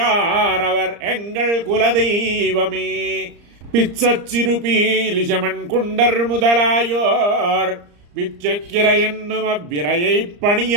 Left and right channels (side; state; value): left; late; 34 ms